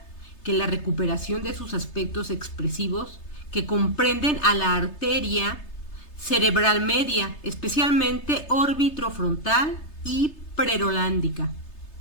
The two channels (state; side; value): late; right; 3.3 ms